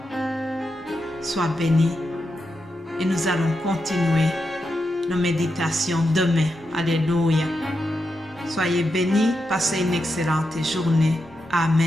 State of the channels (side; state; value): both; normal; correlation 0.86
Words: Sois béni. Et nous allons continuer nos méditations demain. Alléluia. Soyez bénis. Passez une excellente journée.